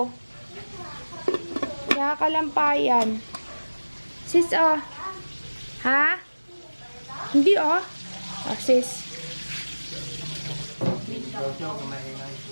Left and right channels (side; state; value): both; inverted; correlation -1.00